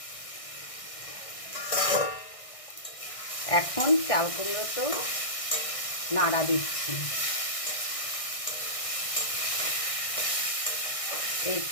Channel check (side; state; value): right; late; 1.6 ms